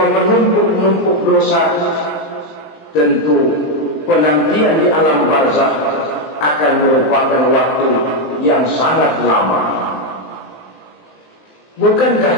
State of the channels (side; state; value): right; late; 19 ms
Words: menumpuk-numpuk dosa, tentu penantian di alam barzakh akan merupakan waktu yang sangat lama.